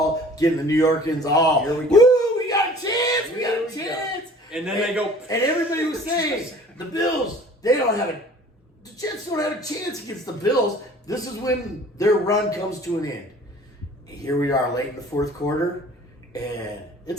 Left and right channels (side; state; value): both; normal; correlation 0.49